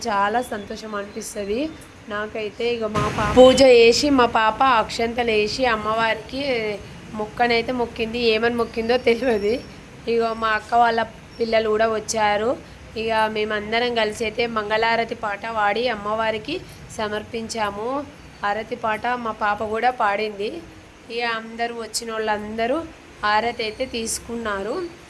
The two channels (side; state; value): both; identical; correlation 1.00